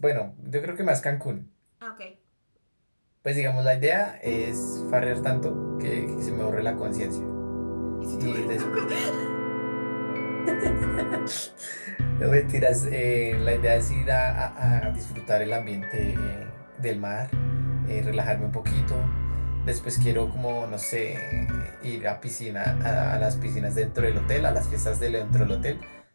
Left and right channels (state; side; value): inverted; both; correlation -1.00